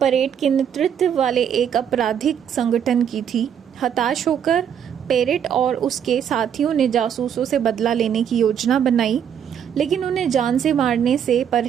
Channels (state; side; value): quieter; left; 8.6 dB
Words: के नेतृत्व वाले एक आपराधिक संगठन की थी। हताश होकर पेरेट और उसके साथियों ने जासूसों से बदला लेने की योजना बनाई, लेकिन उन्हें जान से मारने से